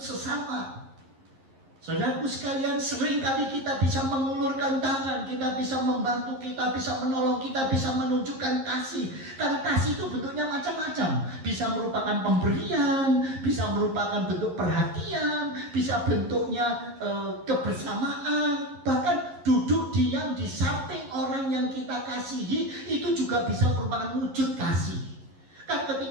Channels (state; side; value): late; left; 11 ms